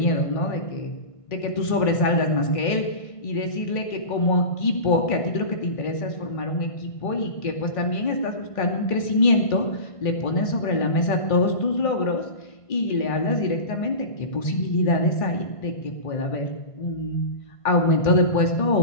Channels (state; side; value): late; right; 1.5 ms